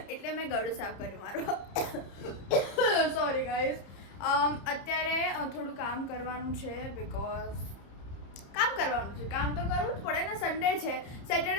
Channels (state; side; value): late; right; 30 ms